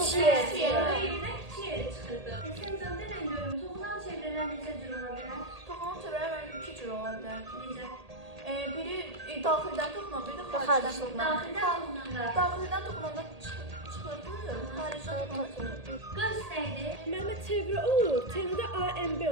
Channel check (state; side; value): late; left; 1.8 ms